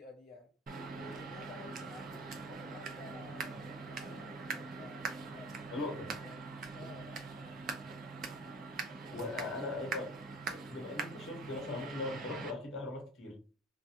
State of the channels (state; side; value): normal; both; correlation 0.41